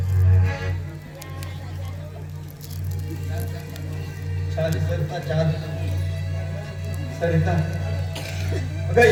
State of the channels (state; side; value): identical; both; correlation 1.00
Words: छान सरिता, छान सरिता. अगं